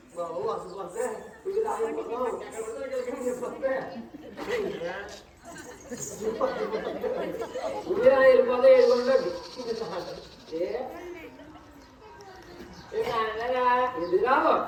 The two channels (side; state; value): both; identical; correlation 1.00